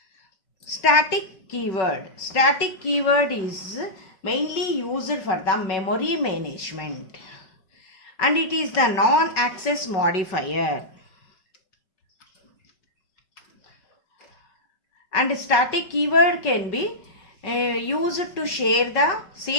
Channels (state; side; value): late; right; 5.3 ms